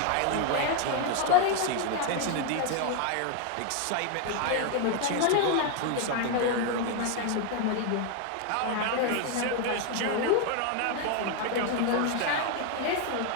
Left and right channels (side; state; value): both; different; correlation 0.01